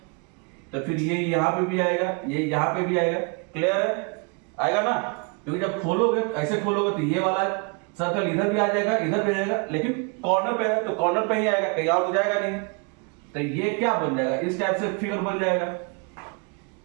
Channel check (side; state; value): left; quieter; 33.8 dB